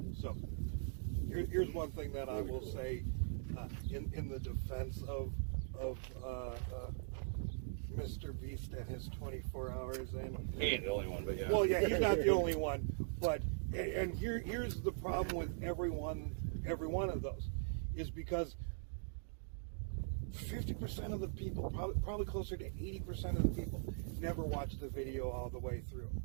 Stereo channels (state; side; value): silent; left; digital silence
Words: So, here's one thing that I will say in the defense of Mr. Beast and his 24 hours. And He ain't the only one, but yeah. Well, yeah, he's not the only one. But and here's the problem with every one of those. Is because 50% of the people, probably closer to 80% of the people, never watch the video all the way through.